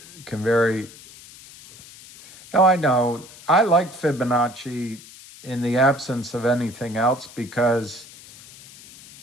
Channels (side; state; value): left; noise; hiss, 20 dB below the sound